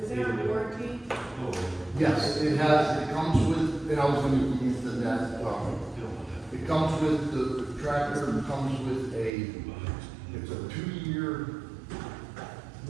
Is there a warranty? Oh, Yes, it comes with, and I was gonna get into that, it comes with, the tractor comes with it's a 2-year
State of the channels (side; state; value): left; drops out; at 9.3 s